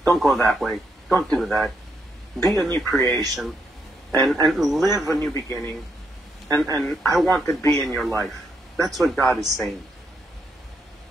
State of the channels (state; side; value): normal; both; correlation 0.77